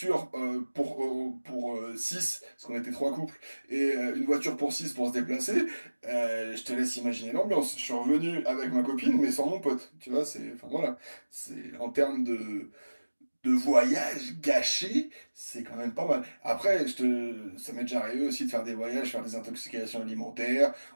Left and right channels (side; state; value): both; inverted; correlation -1.00